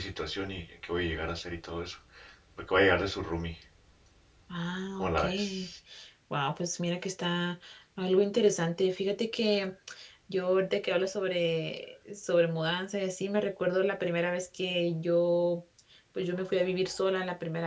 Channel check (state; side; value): identical; both; correlation 1.00